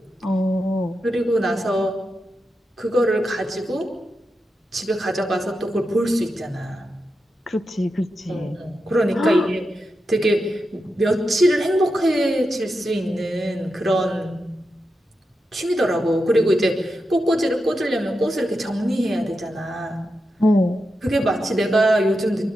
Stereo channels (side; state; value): both; normal; correlation 0.88